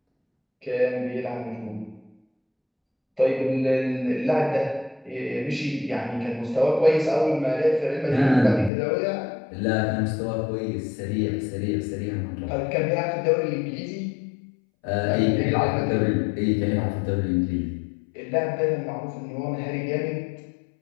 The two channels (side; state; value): right; drops out; at 8.7 s